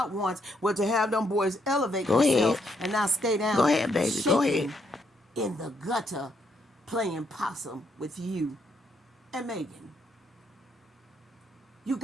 wants, was to have them boys elevate themselves and not stay down. Go ahead, baby. Go ahead. In the gutter playing possum with you and Megan. You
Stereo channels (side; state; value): both; normal; correlation 0.74